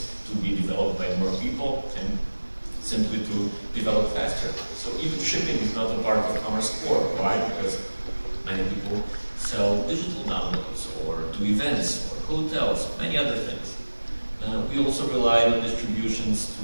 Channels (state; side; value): inverted; both; correlation -1.00